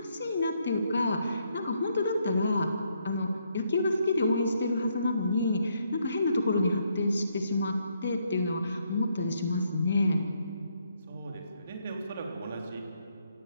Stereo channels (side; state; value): both; inverted; correlation -0.74